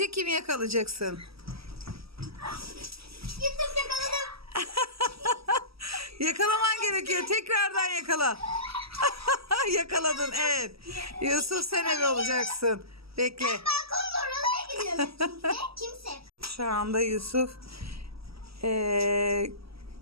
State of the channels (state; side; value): late; left; 0.76 ms